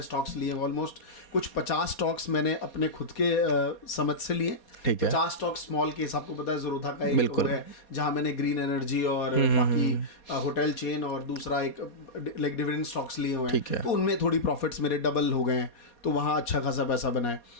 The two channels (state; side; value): late; right; 4.2 ms